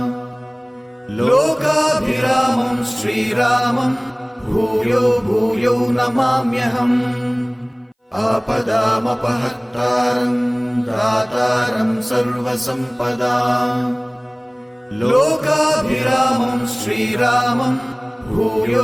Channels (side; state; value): both; identical; correlation 1.00